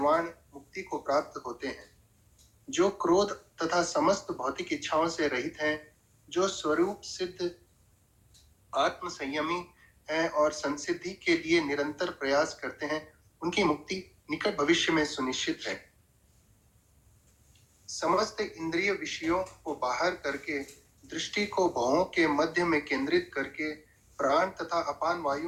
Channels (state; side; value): identical; both; correlation 1.00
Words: मुक्ति को प्राप्त होते हैं। जो क्रोध तथा समस्त भौतिक इच्छाओं से रहित हैं, जो स्वरूप सिद्ध आत्म संयमी हैं और संसिद्धि के लिए निरंतर प्रयास करते हैं, उनकी मुक्ति निकट भविष्य में सुनिश्चित है। समस्त इंद्रिय विषयों को बाहर करके, दृष्टि को भवों के मध्य में केंद्रित करके, प्राण तथा अपान